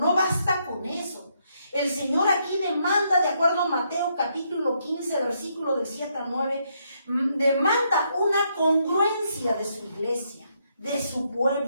basta con eso. El Señor aquí demanda, de acuerdo a Mateo capítulo 15, versículo del 7 al 9, demanda una congruencia de su iglesia, de su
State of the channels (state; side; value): inverted; both; correlation -0.76